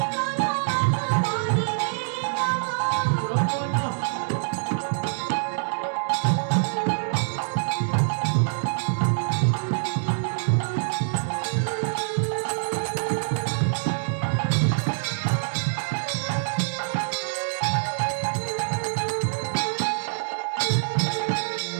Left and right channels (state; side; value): silent; left; 62 dB below the other